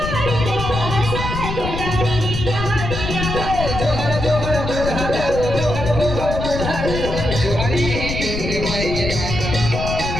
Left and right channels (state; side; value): noise; left; rumble, 5 dB below the sound